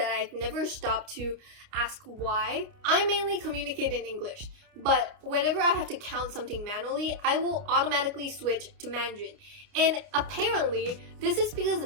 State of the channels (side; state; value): left; late; 29 ms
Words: I've never stopped to ask why. I mainly communicate in English, but whenever I have to count something manually, I will automatically switch to Mandarin. And apparently, this is because the